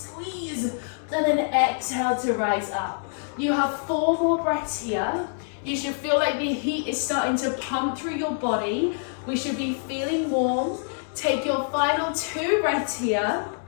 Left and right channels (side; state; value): right; silent; digital silence